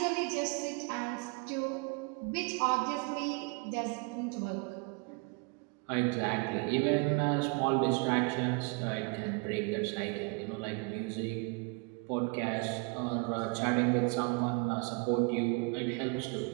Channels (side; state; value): left; quieter; 31.8 dB